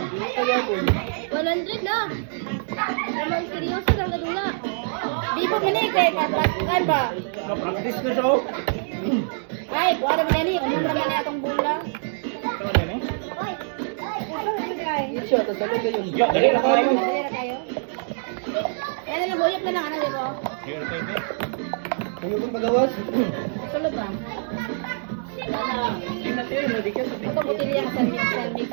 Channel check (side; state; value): left; silent; digital silence